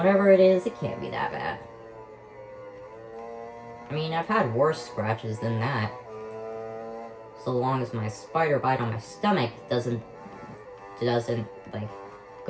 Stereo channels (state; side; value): identical; both; correlation 1.00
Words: it is, it can't be that bad. I mean, I've had worse scratches than that. So long as my spider bite on my stomach doesn't like,